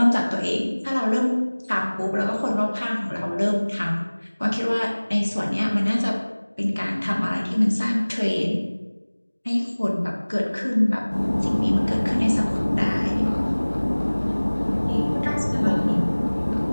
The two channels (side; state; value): both; inverted; correlation -1.00